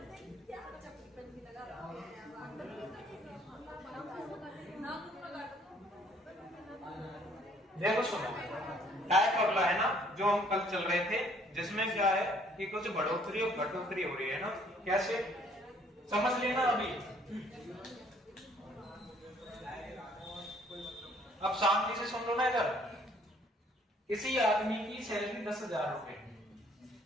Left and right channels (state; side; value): normal; both; correlation 0.61